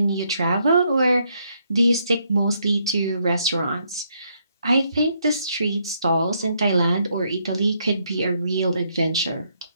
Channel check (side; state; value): both; inverted; correlation -0.74